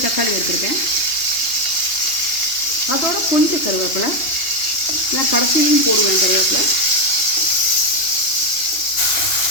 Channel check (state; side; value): late; right; 2.9 ms